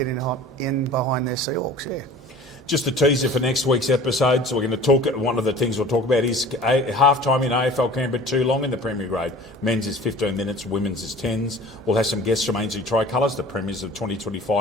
in behind their Seahawks. Yeah. Just a teaser for next week's episode. So we're going to talk. One of the things we'll talk about is half-time in AFL Canberra too long in the Premier Grade. Men's is 15 minutes, women's is 10s. We'll have some guests from Ainsley Tricolours, the premiers of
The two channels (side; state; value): both; normal; correlation 0.44